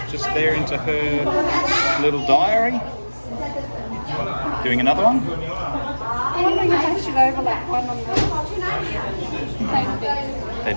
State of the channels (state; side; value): inverted; both; correlation -1.00